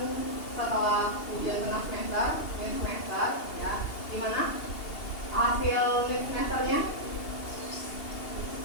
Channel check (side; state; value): right; late; 2.8 ms